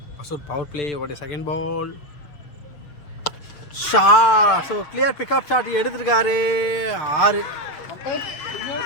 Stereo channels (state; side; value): late; right; 6.8 ms